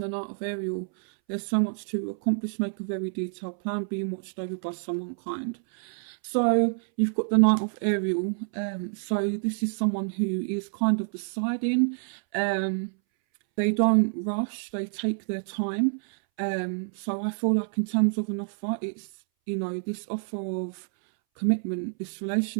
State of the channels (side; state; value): left; silent; 60 dB below the other